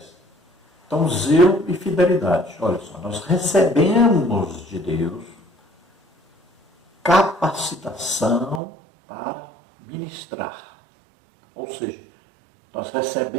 Então, zelo e fidelidade. Olha só, nós recebemos de Deus capacitação para ministrar. Ou seja, nós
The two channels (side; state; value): left; drops out; at 8.6 s